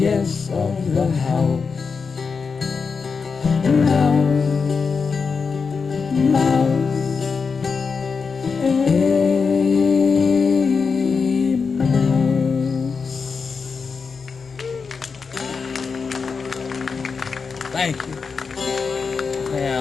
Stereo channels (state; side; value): quieter; right; 5.2 dB